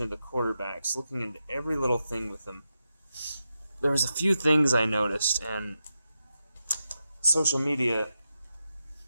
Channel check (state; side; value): inverted; both; correlation -0.88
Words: to the quarterbacks, looking into every little thing with them, there was a few things I noticed, and social media,